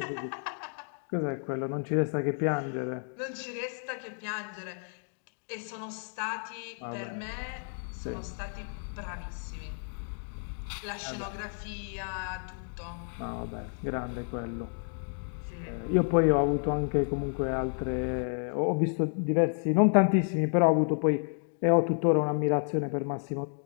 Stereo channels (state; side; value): silent; right; 55 dB below the other